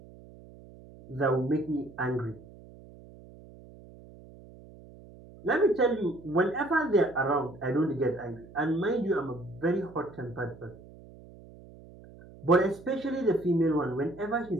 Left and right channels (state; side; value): noise; right; hum, 20 dB below the sound